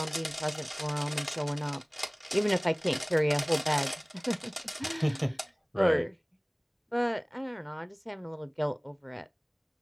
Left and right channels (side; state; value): both; identical; correlation 1.00